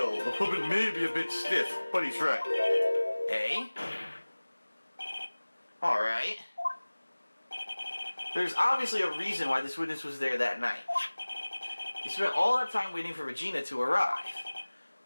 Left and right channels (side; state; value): both; inverted; correlation -1.00